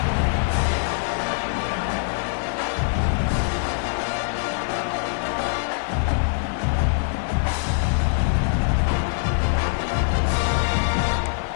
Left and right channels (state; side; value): silent; right; digital silence